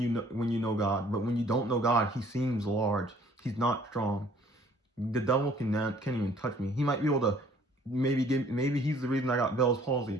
know God, but when you don't know God, he seems large. He's not strong. The devil can't even touch me. He might be able to maybe he's the reason I got Bell's palsy,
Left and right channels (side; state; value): both; normal; correlation 0.57